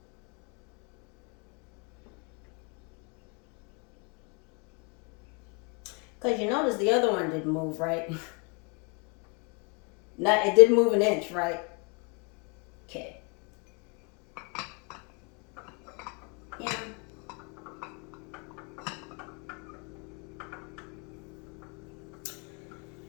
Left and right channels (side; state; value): right; quieter; 33.3 dB